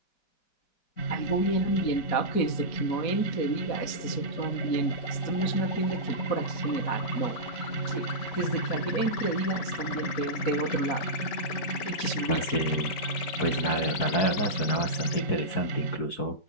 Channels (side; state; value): right; late; 5.2 ms